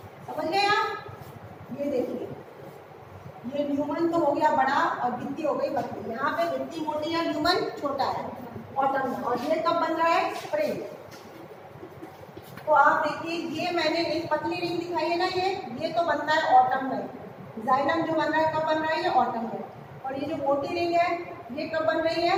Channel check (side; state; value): both; identical; correlation 1.00